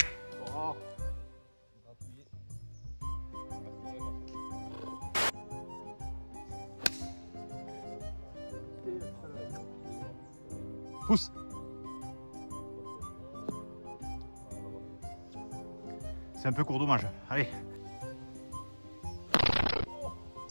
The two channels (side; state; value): both; inverted; correlation -1.00